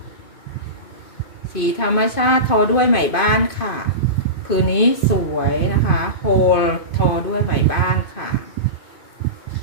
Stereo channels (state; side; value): late; right; 2.5 ms